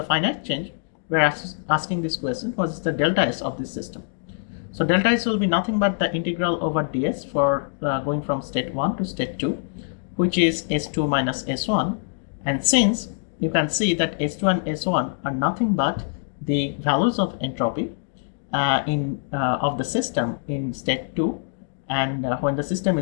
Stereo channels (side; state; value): right; silent; digital silence